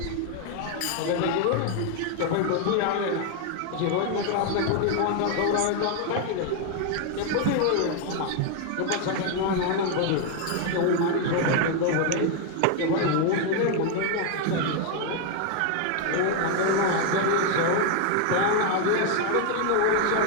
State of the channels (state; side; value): different; both; correlation 0.00